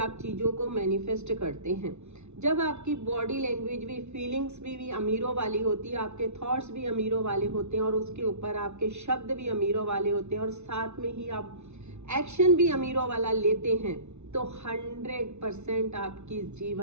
चीज़ों को मैनिफेस्ट करते हैं। जब आपकी बॉडी लैंग्वेज भी, फीलिंग्स भी अमीरों वाली होती है, आपके थॉट्स भी अमीरों वाले होते हैं और उसके ऊपर आपके शब्द भी अमीरों वाले होते हैं और साथ में ही आप एक्शन भी अमीरों वाला लेते हैं, तो 100% आपकी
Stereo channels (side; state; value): left; late; 0.82 ms